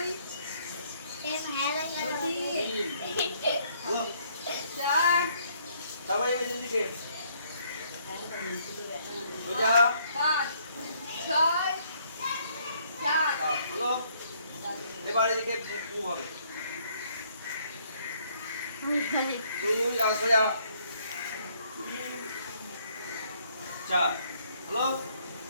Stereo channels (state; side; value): inverted; both; correlation -0.66